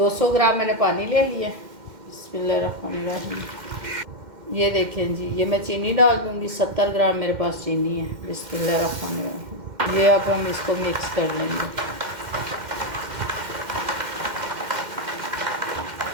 ग्राम मैंने पानी ले लिया। बिस्मिल्लाहिर्रहमानिर्रहीम। ये देखें जी, ये मैं चीनी डाल दूँगी। 70 ग्राम मेरे पास चीनी है। बिस्मिल्लाहिर्रहमानिर्रहीम। ये अब हम इसको मिक्स कर लेंगे।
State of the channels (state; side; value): late; left; 2.1 ms